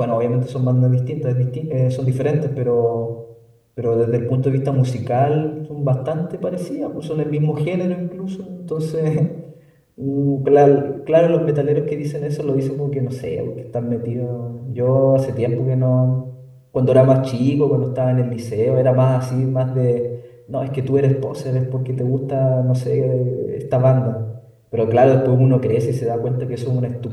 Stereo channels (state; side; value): identical; both; correlation 1.00